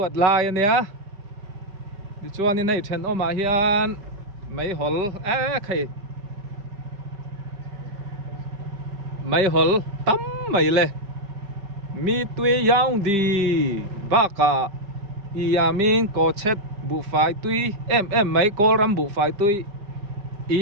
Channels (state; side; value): late; left; 4.9 ms